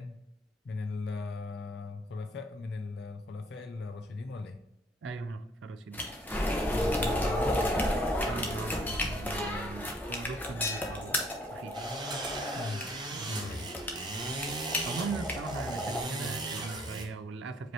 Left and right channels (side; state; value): both; normal; correlation 0.62